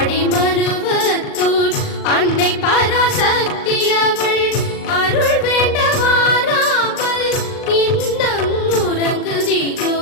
மருவத்தூர் அன்னை பராசக்தி அவள் அருள் வேண்ட வாராமல் இன்னம் உறங்குதியோ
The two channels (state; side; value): late; right; 39 ms